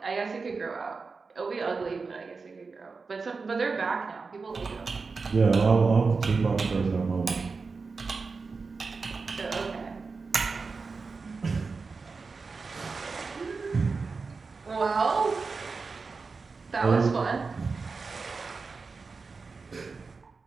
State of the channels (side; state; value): left; quieter; 4.5 dB